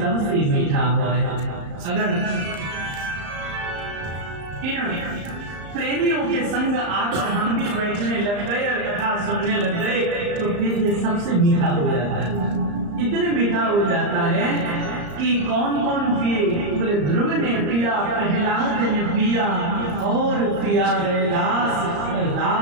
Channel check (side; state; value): left; late; 34 ms